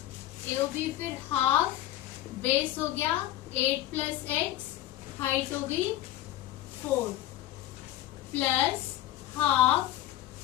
फिर हाफ, बेस हो गया 8 प्लस x, हाइट हो गई 4, प्लस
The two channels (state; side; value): quieter; right; 14.2 dB